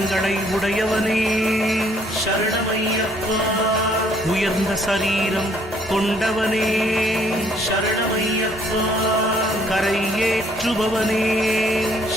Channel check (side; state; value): both; normal; correlation 0.64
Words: உடையவனே சரணமையப்பா உயர்ந்த சரீரம் கொண்டவனே சரணமையப்பா கரை ஏற்றுபவனே